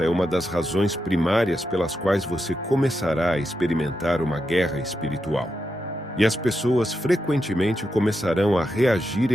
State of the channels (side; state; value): both; normal; correlation 0.86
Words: é uma das razões primárias pelas quais você começará a experimentar uma guerra espiritual. E as pessoas frequentemente começarão a reagir